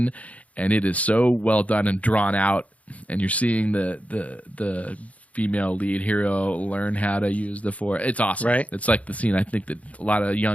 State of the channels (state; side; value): late; right; 0.067 ms